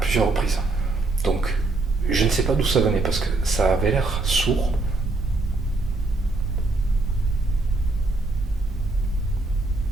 reprises. Donc je ne sais pas d'où ça venait, parce que ça avait l'air sourd.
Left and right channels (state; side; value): quieter; left; 3.2 dB